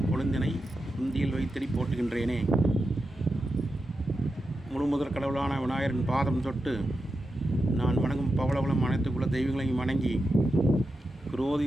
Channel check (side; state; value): both; normal; correlation 0.89